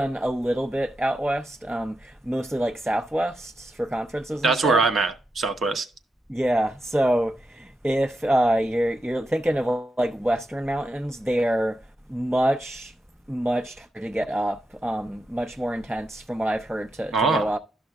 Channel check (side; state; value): both; normal; correlation 0.87